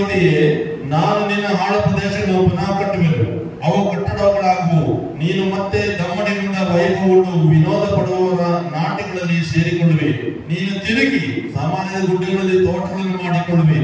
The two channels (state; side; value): identical; both; correlation 1.00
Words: ನಾನು ನಿನ್ನ ಹಾಳು ಪ್ರದೇಶಗಳನ್ನು ಪುನಃ ಕಟ್ಟುವೆನು, ಅವು ಕಟ್ಟಡಗಳಾಗುವು. ನೀನು ಮತ್ತೆ ದಮ್ಮಡಿಗೊಂಡ ವೈಭವವನ್ನು ವಿನೋದ ಪಡುವವರ ನಾಟ್ಯಗಳಲ್ಲಿ ಸೇರಿಕೊಳ್ಳುವೆ. ನೀನು ತಿರುಗಿ ಸಾಮಾನ್ಯ ಗುಡ್ಡೆಗಳಲ್ಲಿ ತೋಟಗಳನ್ನು ಮಾಡಿಕೊಳ್ಳುವೆ.